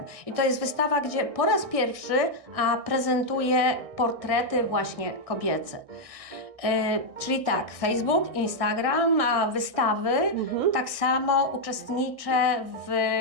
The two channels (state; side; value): late; left; 1.6 ms